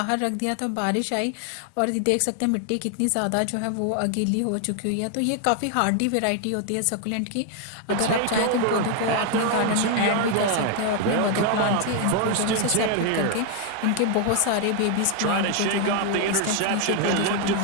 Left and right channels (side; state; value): both; different; correlation 0.01